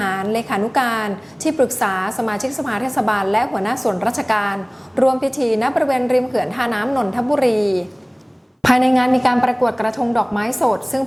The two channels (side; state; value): both; identical; correlation 1.00